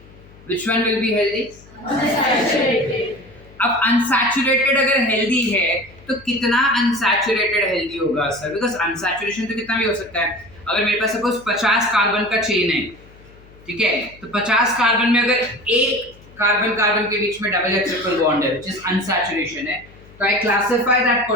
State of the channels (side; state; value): left; noise; hum, 24 dB below the sound